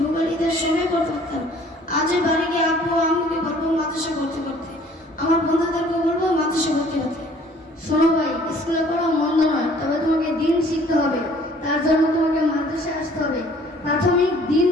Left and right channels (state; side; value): normal; both; correlation 0.56